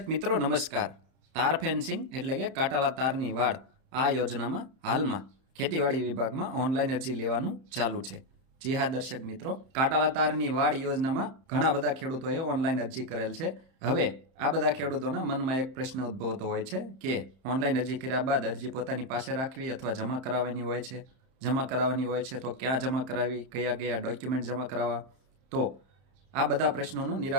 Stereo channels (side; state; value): left; late; 31 ms